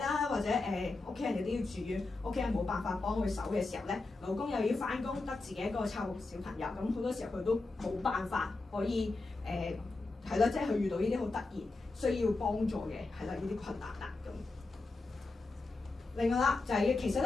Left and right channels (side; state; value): right; quieter; 3.4 dB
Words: 或者屋企人亦都要住院，屋企人冇辦法幫佢手嘅時候咧，老公又要翻工，得自己一個湊小朋友，咁好多時候佢都冇辦法可以係啦，即係佢遇到呢啲好突然需要幫助嘅係啦呢啲困難啦咁。另外啦，就係、其實